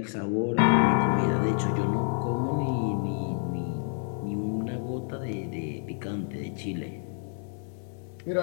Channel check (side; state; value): right; silent; 56 dB below the other